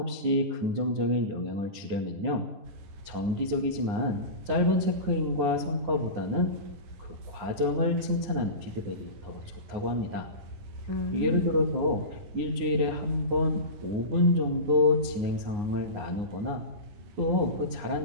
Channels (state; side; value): late; left; 9.7 ms